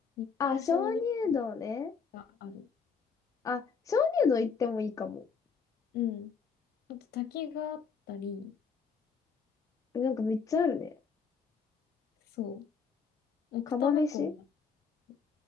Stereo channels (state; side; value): quieter; right; 5.6 dB